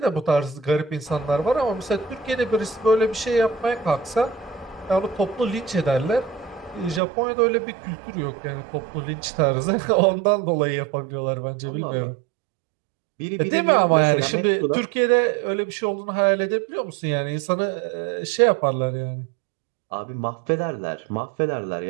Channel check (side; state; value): left; drops out; at 7.0 s